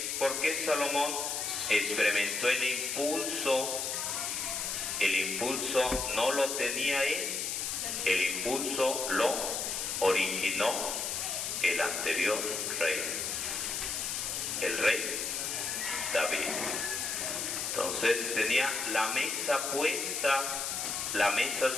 ¿Por qué Salomón experimentó el impulso? El impulso no lo tenía él, el impulso lo originó el anterior rey, el rey David. Entonces tenía la mesa puesta, la mesa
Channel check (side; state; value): left; noise; hiss, 2 dB below the sound